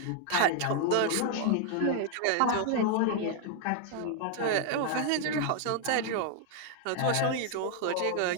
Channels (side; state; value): both; different; correlation 0.00